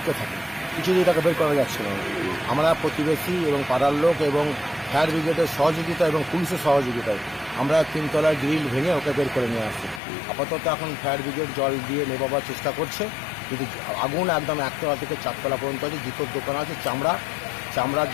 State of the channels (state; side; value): drops out; right; at 10.0 s